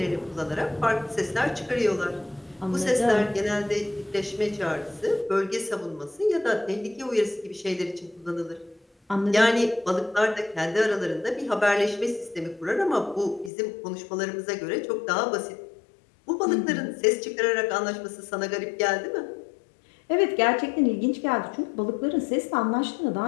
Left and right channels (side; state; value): right; drops out; at 13.5 s